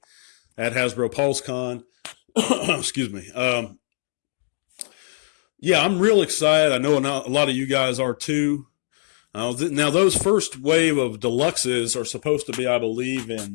at Hasbro PulseCon, excuse me. Yeah, I'm real excited. I know a lot of you guys are too. Now, those first wave of deluxes are supposed to be, I believe,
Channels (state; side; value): silent; right; digital silence